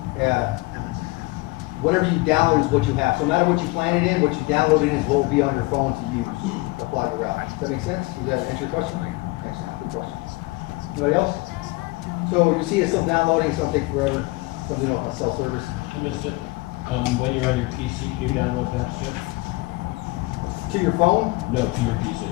Whatever you download is what you have. So no matter what you plan it in, what you download in is what will be on your phone to use to apply the route. Does that make sense? Does that answer your question? Excellent. Good question. Anybody else? So you see it's still downloading, it's gonna take forever, because we don't have cell service. I missed it. When you're on your PC, can you download that shit? To your phone? No, to your PC.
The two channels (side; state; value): right; quieter; 23.1 dB